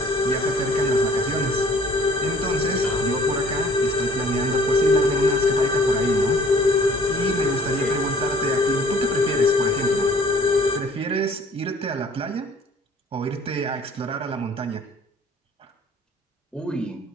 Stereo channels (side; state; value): both; normal; correlation 0.53